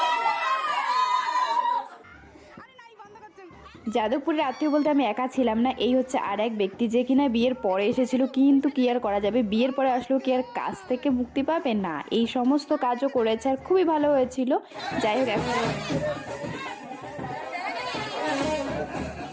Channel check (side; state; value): both; identical; correlation 1.00